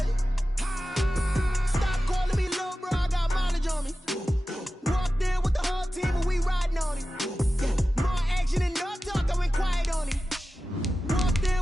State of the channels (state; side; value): normal; both; correlation 0.94